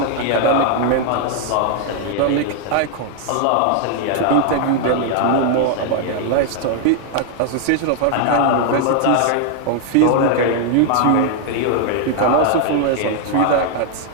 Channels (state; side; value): different; both; correlation 0.00